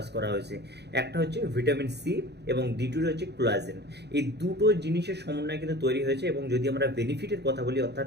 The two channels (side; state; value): left; late; 0.49 ms